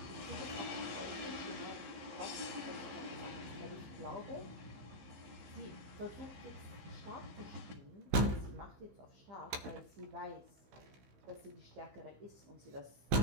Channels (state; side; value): late; left; 15 ms